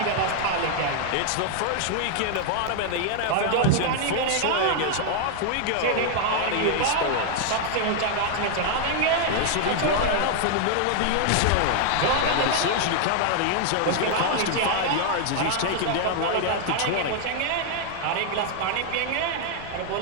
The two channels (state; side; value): different; both; correlation 0.00